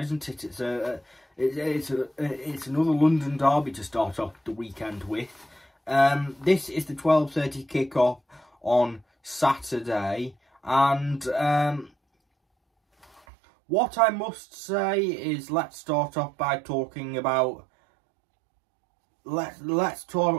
it? It's another London derby to start off the weekend with. This is the 12:30 kickoff on Saturday, and what I must say is, let's start off by talking about let's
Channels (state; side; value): drops out; left; at 13.2 s